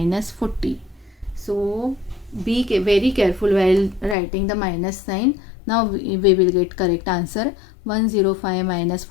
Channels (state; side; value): drops out; right; at 4.2 s